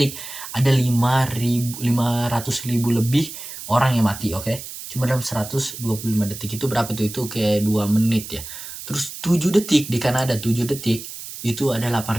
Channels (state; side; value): noise; right; hiss, 11 dB below the sound